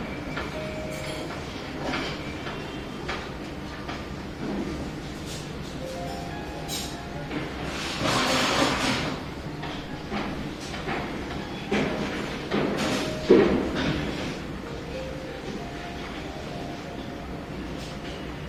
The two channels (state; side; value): identical; both; correlation 1.00